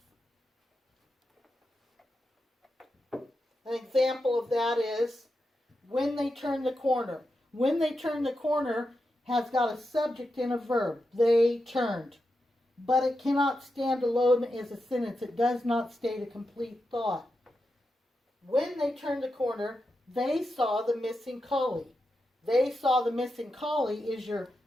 An example of that is when they turn the corner. When they turn the corner has got a subject and a verb. They turned. But it cannot stand alone as a sentence. It does not state a complete thought. When they turned the corner, they saw the missing collie. They saw the missing collie is your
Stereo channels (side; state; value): both; normal; correlation 0.88